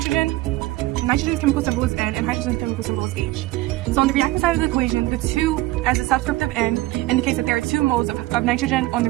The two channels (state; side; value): quieter; left; 18.4 dB